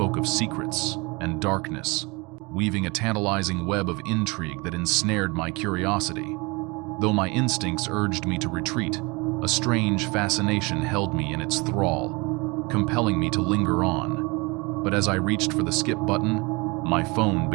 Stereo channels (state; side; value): quieter; left; 26.6 dB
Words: of secrets and darkness, weaving a tantalizing web of intrigue that ensnared my curiosity. Though my instincts urged me to retreat, a strange fascination held me in its thrall, compelling me to linger on. But as I reached for the skip button, my phone